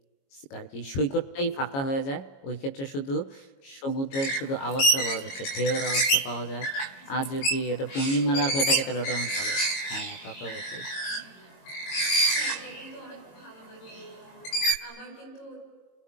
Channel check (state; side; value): late; right; 22 ms